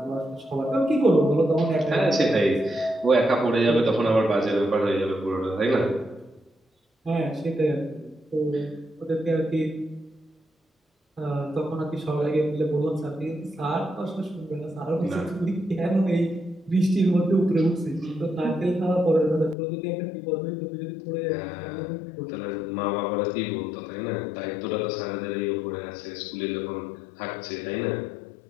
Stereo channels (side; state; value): right; drops out; at 19.6 s